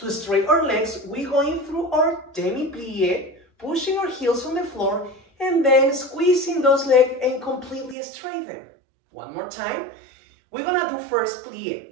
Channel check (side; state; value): left; drops out; at 8.0 s